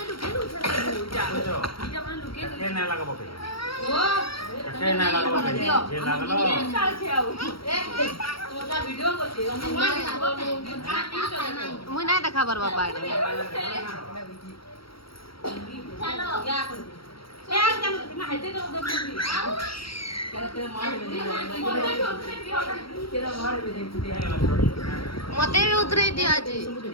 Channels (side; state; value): right; late; 0.75 ms